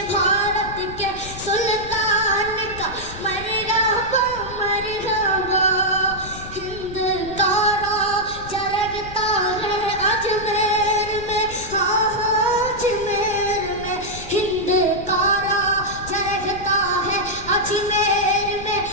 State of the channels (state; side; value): noise; left; rumble, 13 dB below the sound